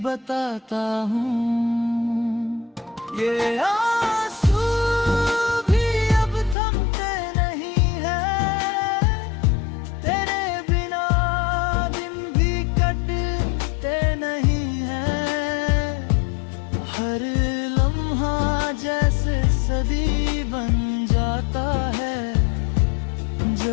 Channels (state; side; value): drops out; right; at 6.6 s